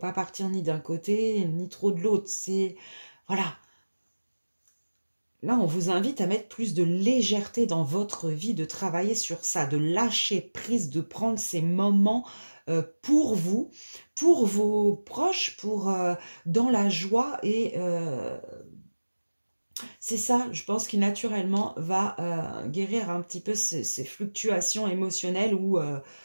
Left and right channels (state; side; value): inverted; both; correlation -1.00